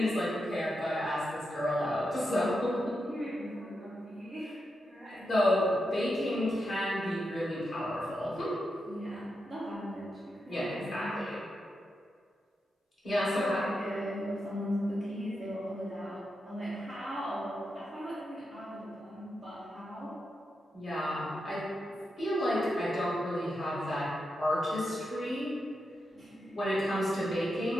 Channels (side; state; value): both; normal; correlation 0.87